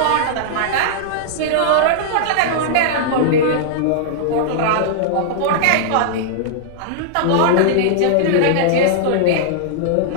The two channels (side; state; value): both; different; correlation -0.02